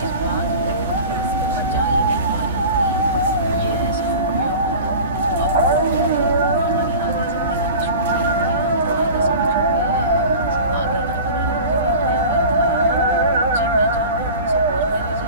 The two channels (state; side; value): inverted; both; correlation -0.36